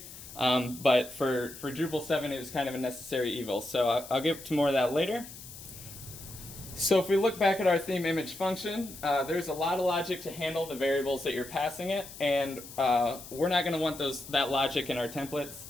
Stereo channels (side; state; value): left; noise; hiss, 15 dB below the sound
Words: But for Drupal 7, it was kind of a necessary evil. So I'll get to more of that later. So if we look back at our theme image function, there's a lot of logic to handle the variables that you're passing it, and we're not going to want that logic in our templates,